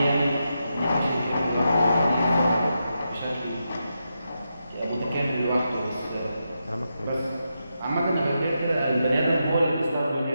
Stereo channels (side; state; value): both; inverted; correlation -0.86